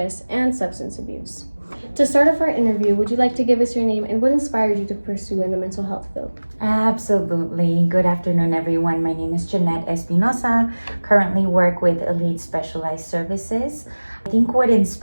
and substance abuse. To start off our interview, would you like to give us your name and what inspired you to pursue in the mental health field? Absolutely. Good afternoon, everyone. My name is Janette Espinoza. Currently work with Elite Specialized Services. I think what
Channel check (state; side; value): inverted; both; correlation -1.00